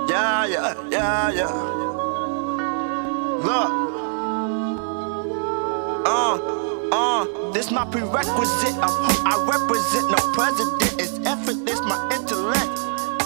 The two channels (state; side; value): silent; left; 56 dB below the other